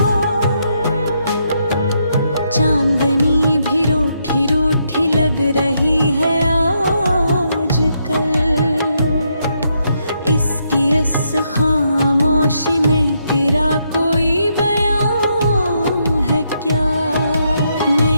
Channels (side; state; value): both; inverted; correlation -0.78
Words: चांदनी भी रूठी रूठी लग रही है आजकल, इसकी इस खामोशी में तेरा कोई बयान है क्या?